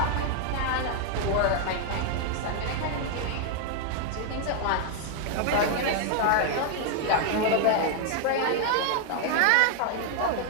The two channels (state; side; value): different; both; correlation 0.00